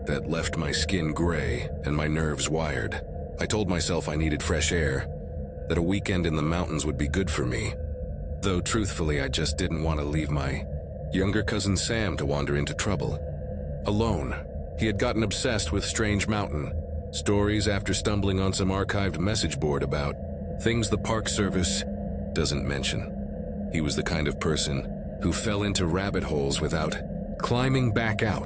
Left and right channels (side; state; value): both; identical; correlation 1.00